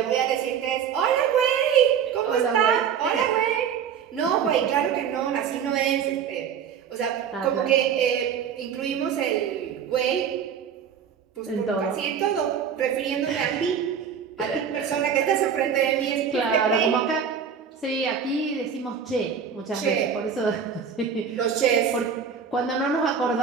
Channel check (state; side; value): quieter; left; 7.4 dB